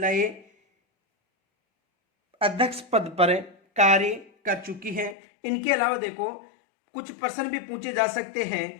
अध्यक्ष पद पर कार्य कर चुकी हैं। इनके अलावा देखो कुछ प्रश्न भी पूछे जा सकते हैं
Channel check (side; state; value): right; drops out; at 5.2 s